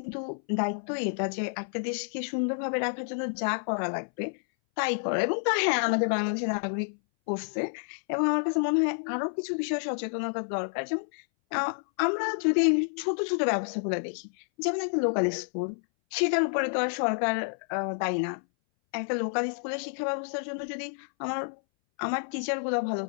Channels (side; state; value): right; silent; 58 dB below the other